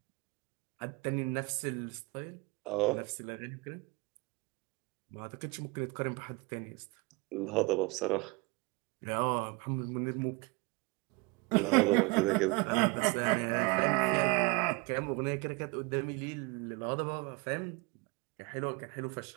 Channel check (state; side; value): quieter; left; 26.8 dB